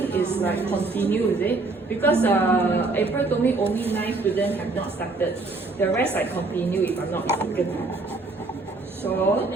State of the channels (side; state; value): left; quieter; 3.5 dB